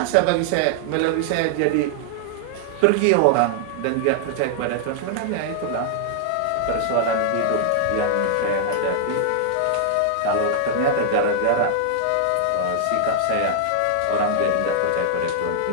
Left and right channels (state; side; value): different; both; correlation -0.01